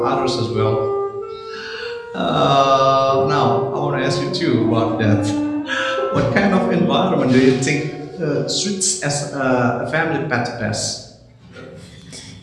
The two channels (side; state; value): both; identical; correlation 1.00